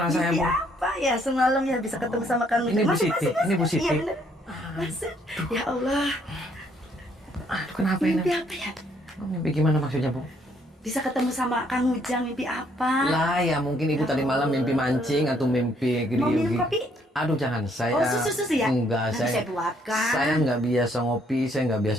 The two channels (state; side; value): normal; both; correlation 0.68